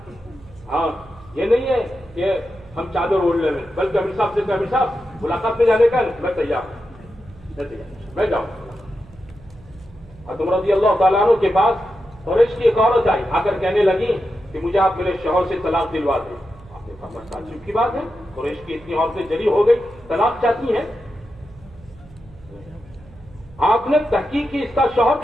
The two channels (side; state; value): right; noise; hum, 23 dB below the sound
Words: ہاں یہ نہیں ہے کہ ہم چادر اوڑھ لیں, بلکہ امیر صاحب سے کہ امیر صاحب ملاقات میں جانے کا میں تیار ہوں, میں جاؤں. حضرت رضی اللہ تعالیٰ عنہ کے پاس قریش کی ایک عورت آئی, آ کر کہنے لگی کہ مجھے آپ میرے شوہر سے طلاق دلوا دیں. آپ نے کہا بس تعجب کی بات ہے, قریش کی اتنی عورتیں جری ہو گئی, طلاق چاہتی ہیں. آپ نے تحقیق کی اس کا شوہر